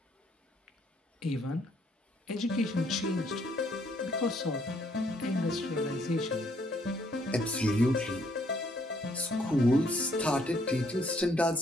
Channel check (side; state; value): both; normal; correlation 0.68